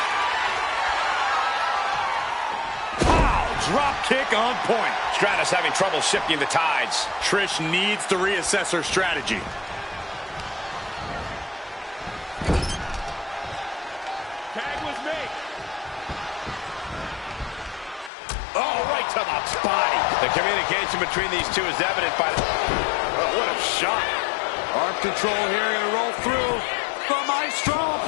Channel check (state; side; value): drops out; right; at 18.1 s